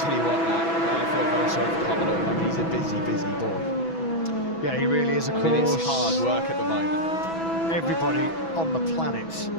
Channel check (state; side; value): late; right; 6.1 ms